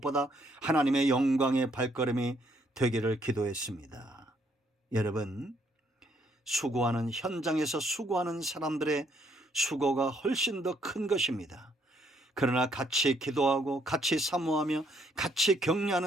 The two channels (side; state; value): both; normal; correlation 0.69